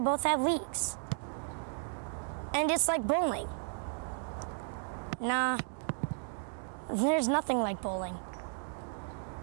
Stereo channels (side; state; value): left; silent; digital silence